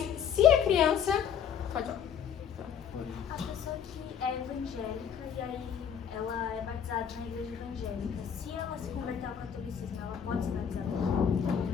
se a criança... Pode falar. A pessoa que é evangélica e aí ela é batizada na igreja evangélica, se ela se converter ao catolicismo, ela pode ser batizada ou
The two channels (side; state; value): right; quieter; 8.0 dB